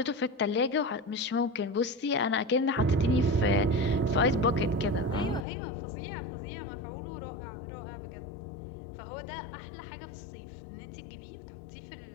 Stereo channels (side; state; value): right; drops out; at 5.5 s